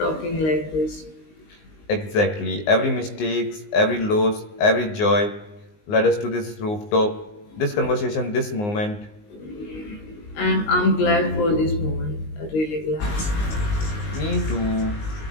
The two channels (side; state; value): right; late; 19 ms